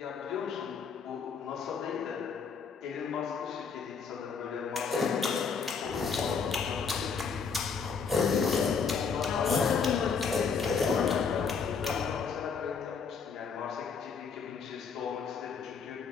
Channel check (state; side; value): quieter; right; 5.8 dB